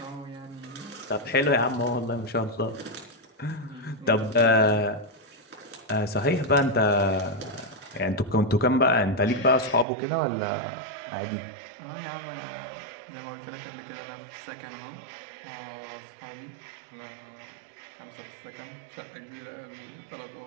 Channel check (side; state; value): left; drops out; at 9.9 s